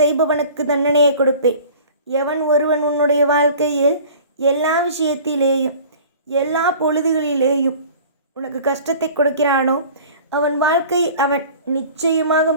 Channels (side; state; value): both; inverted; correlation -0.44